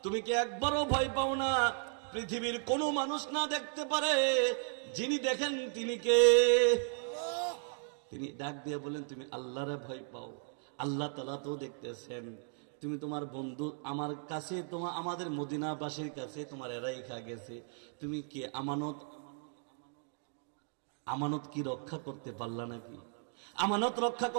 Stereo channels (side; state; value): left; silent; 54 dB below the other